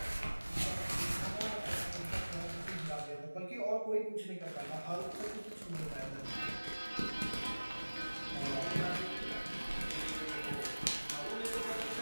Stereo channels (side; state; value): both; inverted; correlation -1.00